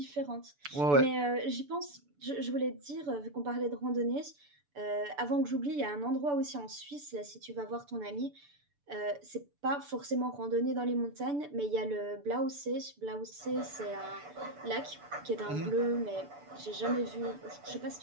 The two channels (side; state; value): left; late; 6.9 ms